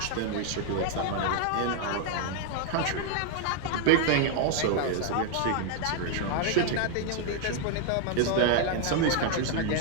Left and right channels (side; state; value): both; different; correlation 0.00